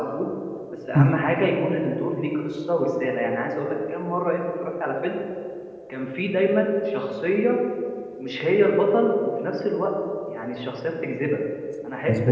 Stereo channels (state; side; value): identical; both; correlation 1.00